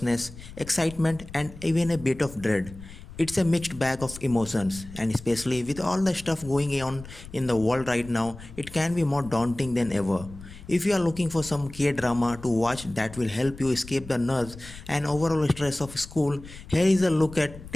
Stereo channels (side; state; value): left; noise; rumble, 16 dB below the sound